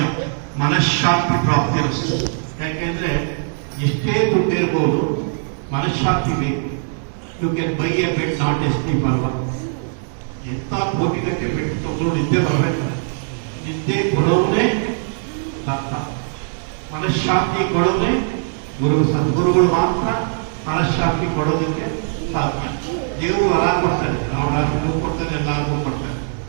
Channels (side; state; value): left; silent; digital silence